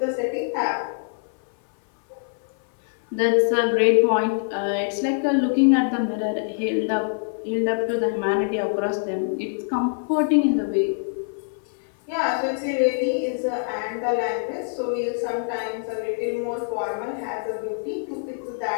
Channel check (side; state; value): right; silent; 57 dB below the other